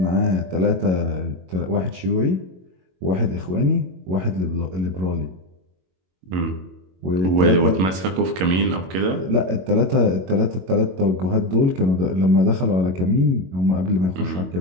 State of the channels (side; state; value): left; late; 22 ms